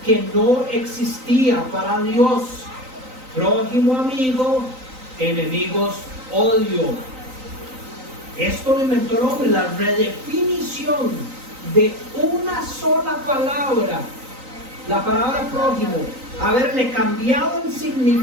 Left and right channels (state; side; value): late; left; 3.9 ms